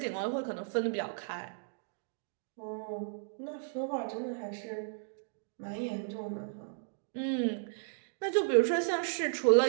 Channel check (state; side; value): silent; left; digital silence